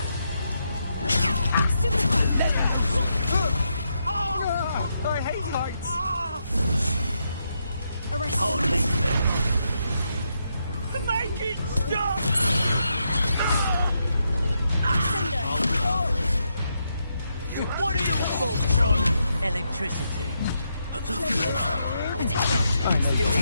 I hate heights. Arrest Hardly. Make it stop! What are your thoughts on electricity?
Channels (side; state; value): both; inverted; correlation -0.81